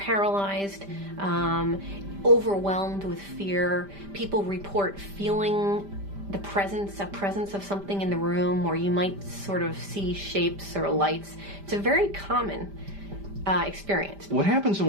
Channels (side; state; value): left; late; 5.0 ms